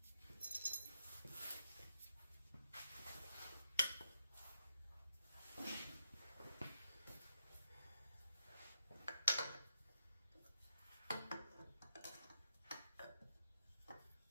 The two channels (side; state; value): both; inverted; correlation -0.82